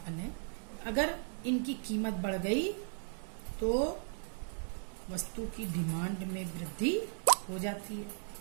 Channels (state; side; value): silent; left; 53 dB below the other